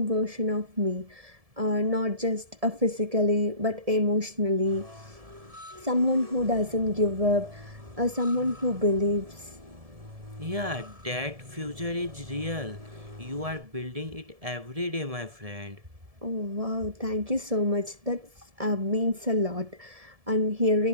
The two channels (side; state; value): left; late; 1.7 ms